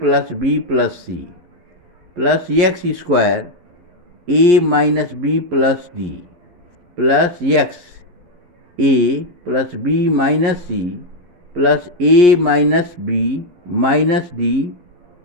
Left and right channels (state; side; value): late; left; 11 ms